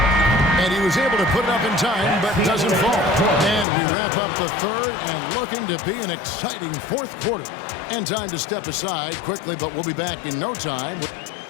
And he was able to put it up in time, but doesn't fall. And we wrap up the 3rd and looking to be an exciting 4th quarter. And time to step aside quickly, but we'll be back in no time.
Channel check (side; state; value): right; drops out; at 3.7 s